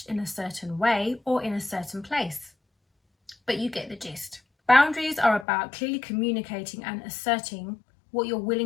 in a certain way or in a certain place, but you get the gist. Boundaries are about clearly communicating and asserting what you're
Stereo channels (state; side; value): drops out; right; at 5.5 s